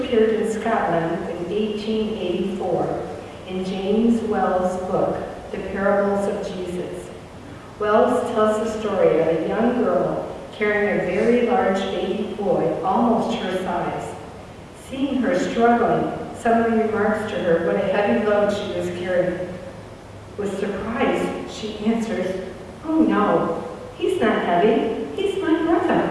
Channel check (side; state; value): both; identical; correlation 1.00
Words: in Scotland in 1884 in James Wells' book, The Parables of Jesus. Wells tells the story of a young girl carrying a very large baby boy, almost her size. Seeing her struggling, someone remarks to her what a heavy load she was carrying. With surprise, she answers, "Oh no, he's not heavy, he's my brother."